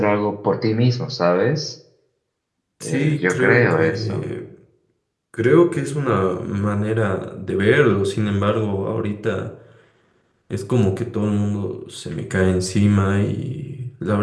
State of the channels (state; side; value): identical; both; correlation 1.00